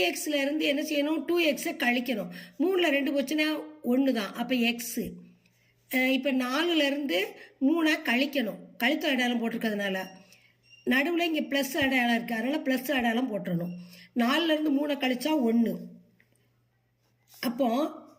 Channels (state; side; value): identical; both; correlation 1.00